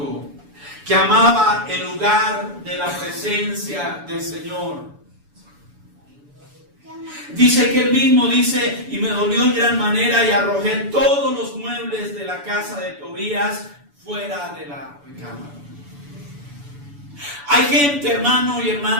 que amaba el lugar de la presencia del Señor. Dice que él mismo dice, y me dolió en gran manera y arrojé todos los muebles de la casa de Tobías fuera de la recámara. Hay gente, hermano y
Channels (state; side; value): late; left; 7.0 ms